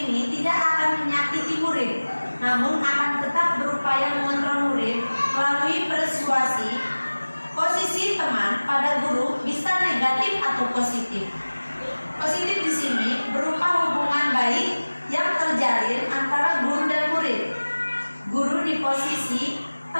ini tidak akan menyakiti murid, namun akan tetap berupaya mengontrol murid melalui persuasi. Posisi teman pada guru bisa negatif atau positif. Positif di sini berupa hubungan baik yang terjalin antara guru dan murid. Guru di posisi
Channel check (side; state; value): both; inverted; correlation -1.00